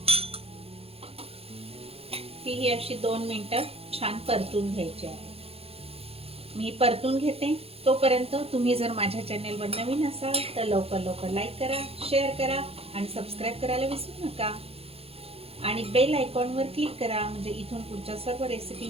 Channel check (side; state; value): left; late; 0.28 ms